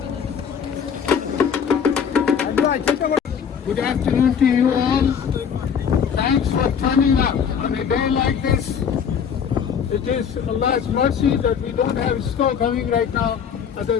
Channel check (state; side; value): quieter; right; 7.4 dB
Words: Good afternoon to you all. Thanks for turning up on a day like this. It is Allah's mercy that we don't have snow coming right now other